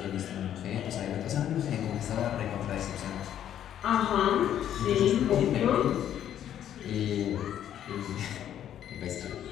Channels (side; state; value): right; quieter; 10.5 dB